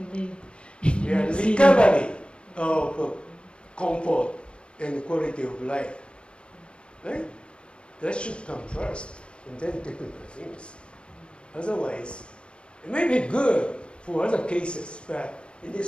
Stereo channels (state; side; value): late; right; 0.056 ms